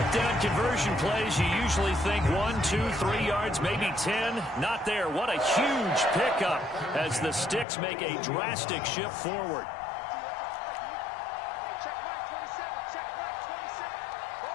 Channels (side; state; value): right; drops out; at 7.7 s